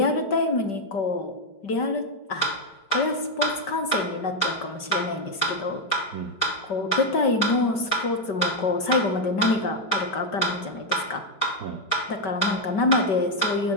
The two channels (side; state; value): right; late; 5.2 ms